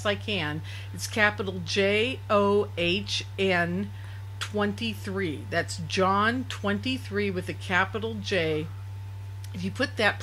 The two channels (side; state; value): both; identical; correlation 1.00